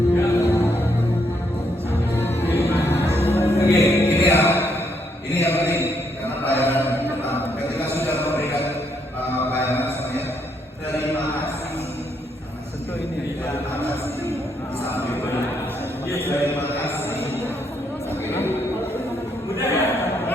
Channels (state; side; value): normal; both; correlation 0.74